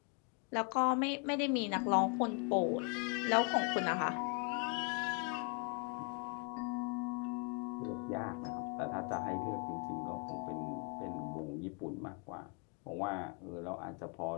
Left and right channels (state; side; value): quieter; right; 36.1 dB